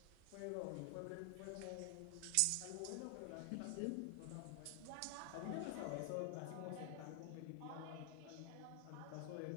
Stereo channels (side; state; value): both; different; correlation 0.00